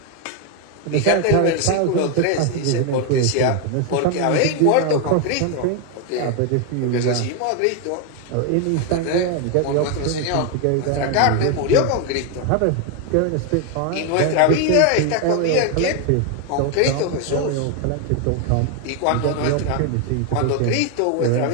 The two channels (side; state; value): both; different; correlation 0.01